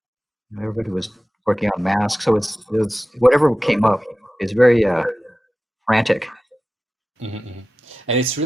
Everybody was working on Mask, so it's whatever came up is very frantic. And it's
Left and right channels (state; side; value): normal; both; correlation 0.94